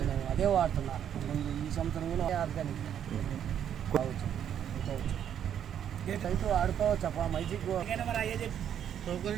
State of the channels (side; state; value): left; quieter; 9.4 dB